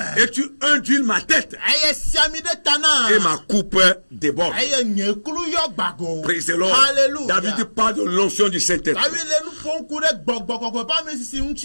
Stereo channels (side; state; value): both; inverted; correlation -1.00